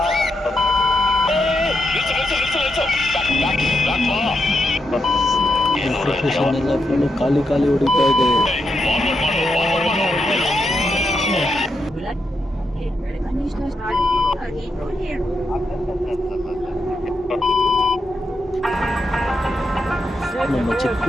ಮೆಟ್ರೋ ಸ್ಟೇಷನ್ ಎಲ್ಲ ಫುಲ್ಲು ಖಾಲಿ ಹೊಡಿತಾ ಇದೆ. ನಮ್ಮ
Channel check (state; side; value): normal; both; correlation 0.83